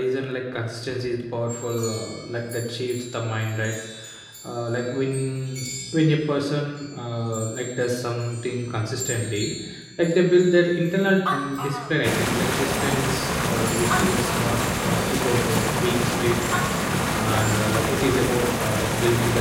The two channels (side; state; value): both; identical; correlation 1.00